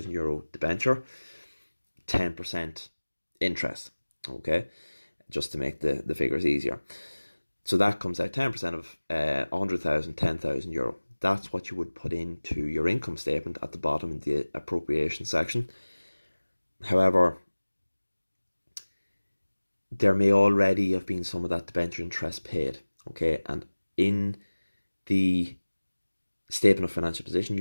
debenture, 10% interest. Okay, just to make the figures easier. So that comes out 10% of 100,000, €10,000. That's what you would put into your income statement at the bottom in the appropriation section. However, there may already have been some of that debenture interest paid. Okay, and in the statement of financial position,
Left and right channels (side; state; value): both; inverted; correlation -1.00